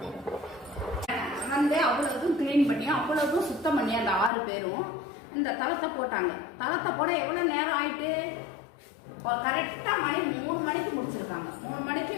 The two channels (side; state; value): right; drops out; at 4.3 s